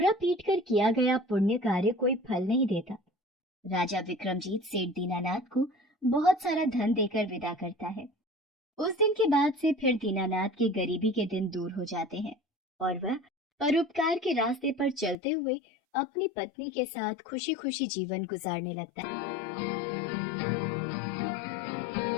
पीट कर किया गया पुण्य कार्य कोई फल नहीं देता। राजा विक्रमजीत सेठ दीनानाथ को बहुत सारा धन देकर विदा करता है। उस दिन के बाद से फिर दीनानाथ के गरीबी के दिन दूर हो जाते हैं और वह परोपकार के रास्ते पर चलते हुए अपनी पत्नी के साथ खुशी खुशी जीवन गुजारने लगता है।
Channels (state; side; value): drops out; right; at 15.2 s